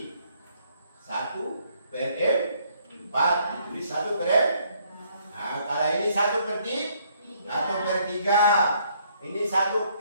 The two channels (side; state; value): both; inverted; correlation -0.67